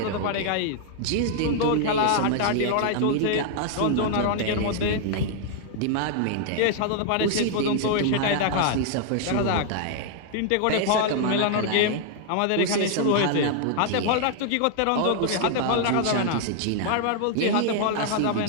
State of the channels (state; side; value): different; both; correlation -0.01